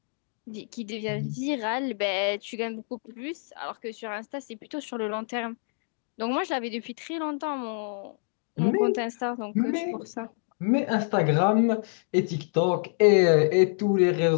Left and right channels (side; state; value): right; silent; digital silence